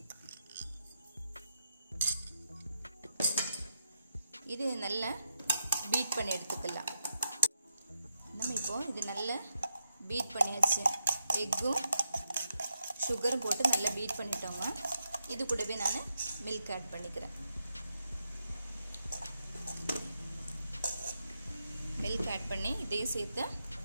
இது நல்லா பீட் பண்ணி எடுத்துக்கலாம். நம்ம இப்போ இது நல்லா பீட் பண்ணியாச்சு. எக்கும் சுகரும் போட்டு நல்லா பீட் பண்ணிட்டோங்க. இது கூடவே நான் மில்க் ஆட் பண்ணிக்கிறேன். மில்க் ஆட் பண்ணி இதையும் சேர்த்து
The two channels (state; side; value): inverted; both; correlation -0.83